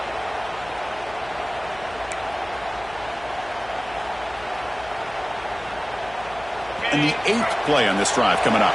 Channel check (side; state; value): left; noise; hum, 20 dB below the sound